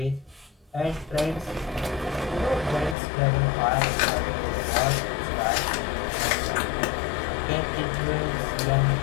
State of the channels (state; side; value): drops out; right; at 3.0 s